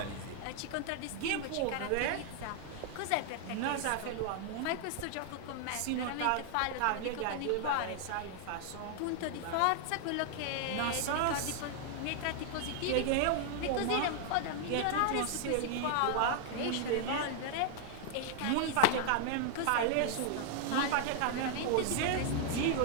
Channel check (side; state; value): both; different; correlation 0.00